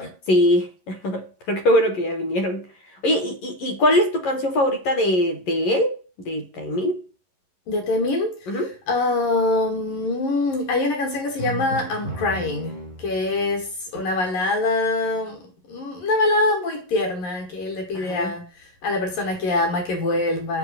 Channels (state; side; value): late; right; 11 ms